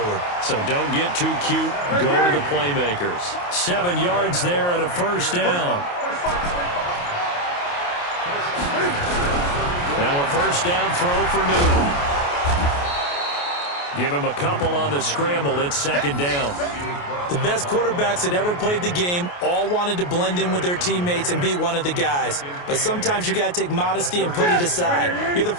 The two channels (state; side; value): late; right; 28 ms